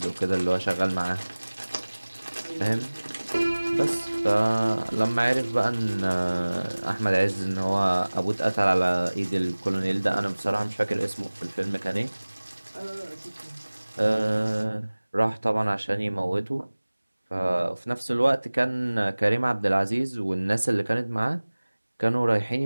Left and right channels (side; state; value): both; inverted; correlation -1.00